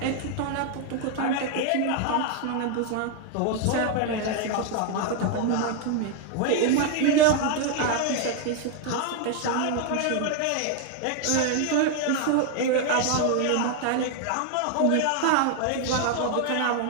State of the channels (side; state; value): both; different; correlation 0.00